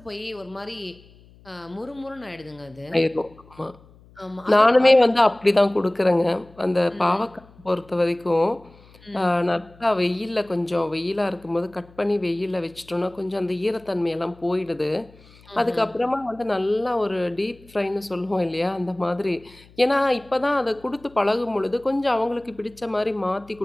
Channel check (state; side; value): noise; left; hum, 26 dB below the sound